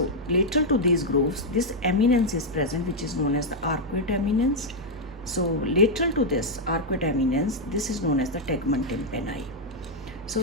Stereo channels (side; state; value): both; normal; correlation -0.01